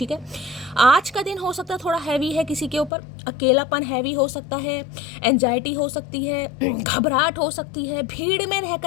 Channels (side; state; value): right; drops out; at 2.9 s